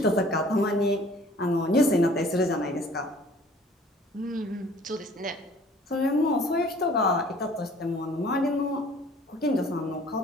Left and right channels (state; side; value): normal; both; correlation 0.53